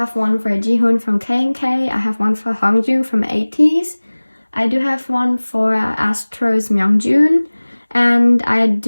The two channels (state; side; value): inverted; both; correlation -1.00